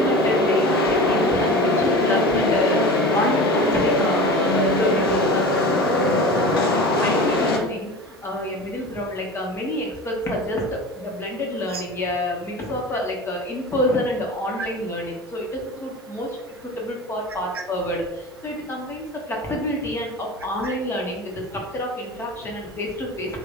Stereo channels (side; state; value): both; normal; correlation 0.34